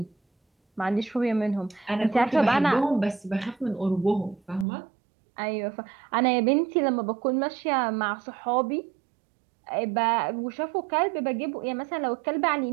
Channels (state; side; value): drops out; left; at 4.7 s